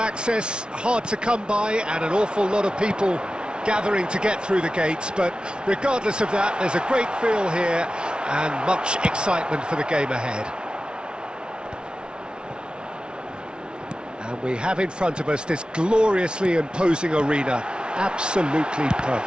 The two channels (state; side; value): late; left; 0.055 ms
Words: hard to come by, and an awful lot of people gathering to get through the gates, but regardless of that, there's a great feel here and much excitement for the game ahead. And we have in front of us this gloriously imposing arena, absolutely